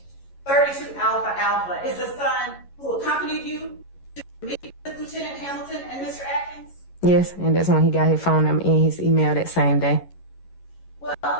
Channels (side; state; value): right; late; 11 ms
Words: 32 Alpha Alpha is the son who accompanied you to meet with Lieutenant Hamilton and Mr. Atkins? Yes, and that's when he got his phone number and his email that same day. Well,